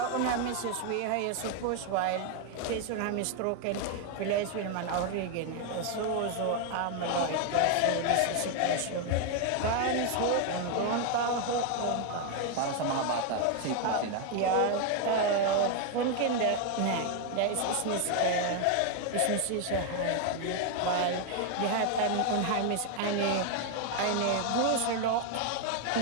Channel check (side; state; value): both; different; correlation 0.01